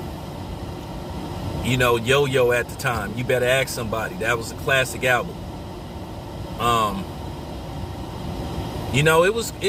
at the time, You Better Ask Somebody. That was a classic album.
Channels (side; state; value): both; identical; correlation 1.00